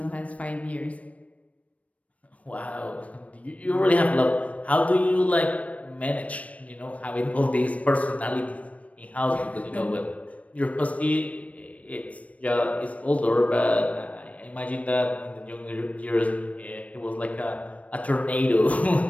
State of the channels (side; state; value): right; late; 0.066 ms